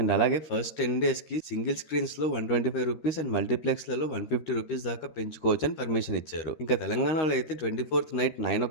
అండ్ అలాగే ఫస్ట్ 10 daysకి సింగిల్ స్క్రీన్స్లో 125 రూపీస్ అండ్ మల్టీప్లెక్స్లలో 150 రూపీస్ దాకా పెంచుకోవచ్చు అని పర్మిషన్ ఇచ్చారు. ఇంకా తెలంగాణలో అయితే 24th నైట్ 9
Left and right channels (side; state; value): right; late; 13 ms